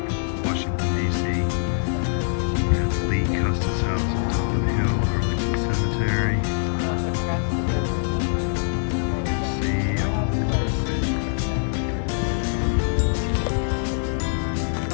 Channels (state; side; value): silent; right; digital silence